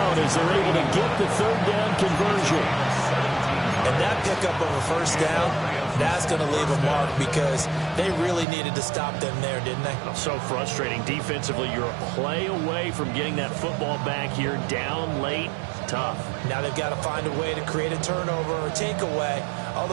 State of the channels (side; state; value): left; drops out; at 8.5 s